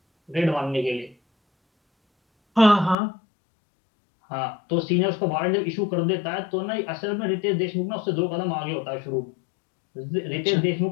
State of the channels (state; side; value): drops out; right; at 3.0 s